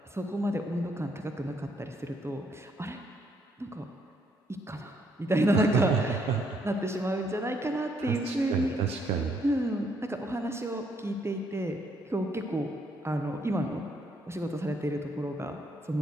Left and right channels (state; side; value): normal; both; correlation 0.71